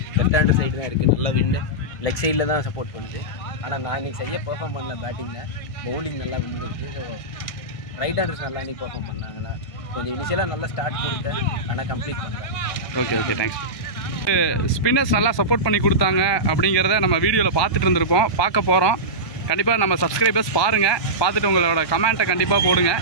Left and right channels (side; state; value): right; late; 1.2 ms